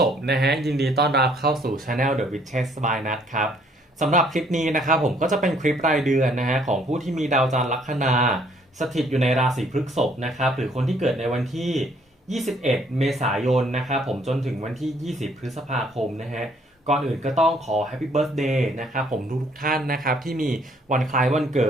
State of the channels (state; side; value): normal; both; correlation 0.63